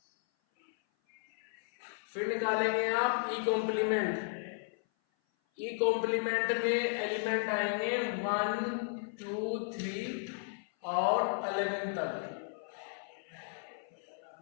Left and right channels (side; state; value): right; silent; 55 dB below the other